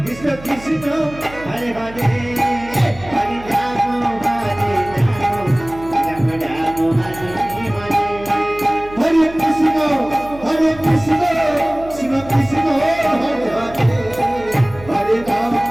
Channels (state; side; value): noise; right; hum, 17 dB below the sound